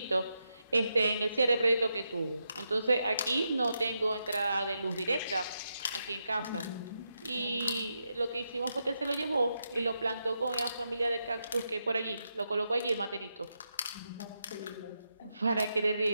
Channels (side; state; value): both; inverted; correlation -0.84